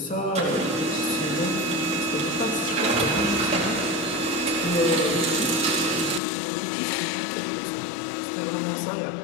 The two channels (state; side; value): drops out; right; at 6.2 s